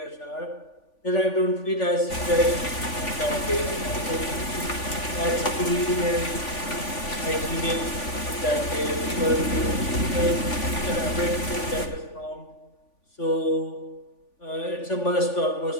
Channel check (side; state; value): right; late; 3.5 ms